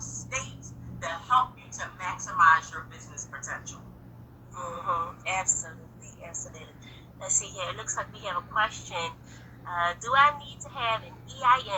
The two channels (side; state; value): both; identical; correlation 1.00